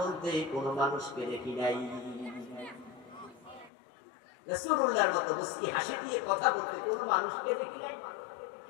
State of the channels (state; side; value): drops out; right; at 3.7 s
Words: কোনো মানুষকে দেখি নাই। রাসূলুল্লাহর মতো মুস্কি হাসি দিয়ে কথা বলতে কোনো মানুষকে দেখি নাই।